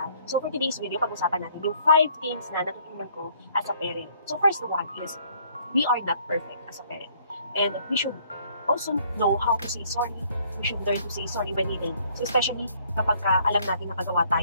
So for today's video, pag-usapan natin yung 5 things na natutunan ko as a parent. So first one is, we are not perfect as a parent. And we should also know how to say sorry. We should learn to say sorry when needed. So especially kapag alam natin nakagawa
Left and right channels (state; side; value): inverted; both; correlation -0.62